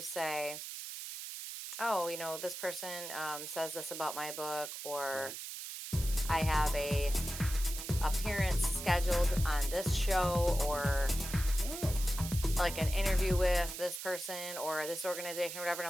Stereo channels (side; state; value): right; noise; hiss, 8 dB below the sound